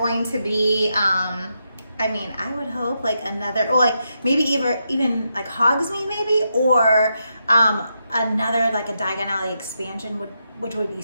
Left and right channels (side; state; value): both; inverted; correlation -0.83